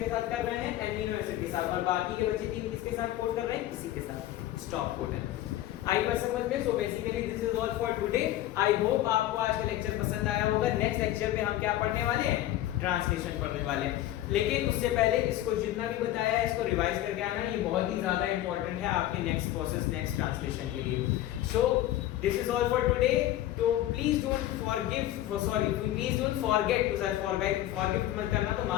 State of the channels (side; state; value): right; quieter; 13.9 dB